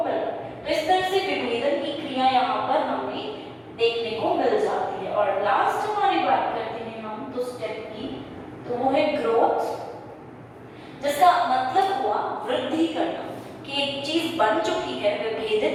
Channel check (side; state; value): both; identical; correlation 1.00